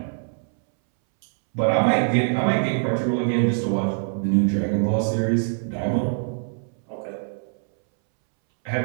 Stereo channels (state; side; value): silent; left; 63 dB below the other